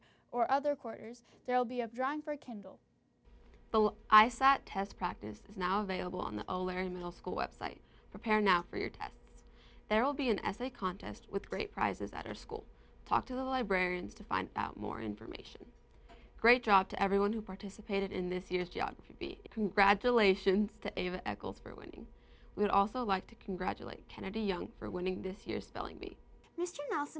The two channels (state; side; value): identical; both; correlation 1.00